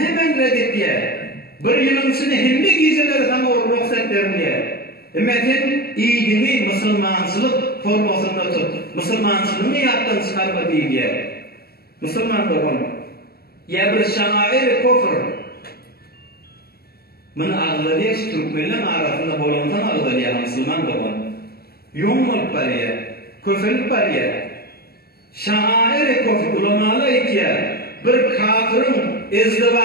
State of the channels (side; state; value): right; late; 0.45 ms